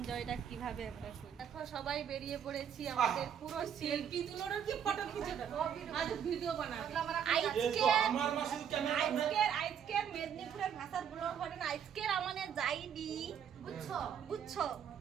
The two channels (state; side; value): quieter; left; 8.4 dB